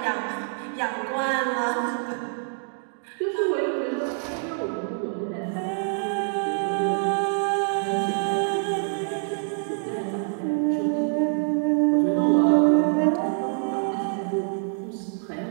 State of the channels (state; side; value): silent; left; 61 dB below the other